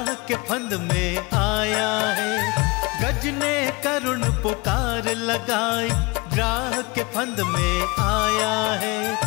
के फंद में आया है। गज ने करुण पुकार लगाई, ग्राह के फंद में आया है।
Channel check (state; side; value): quieter; right; 26.0 dB